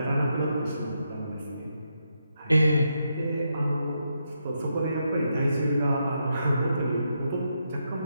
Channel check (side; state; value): both; inverted; correlation -0.82